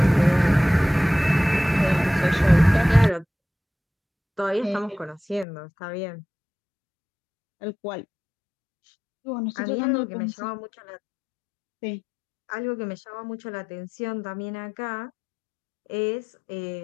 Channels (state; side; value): drops out; right; at 5.5 s